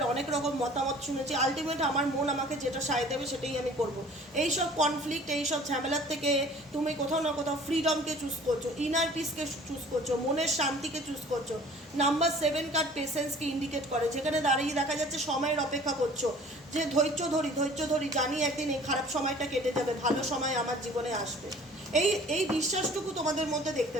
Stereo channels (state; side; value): normal; both; correlation 0.49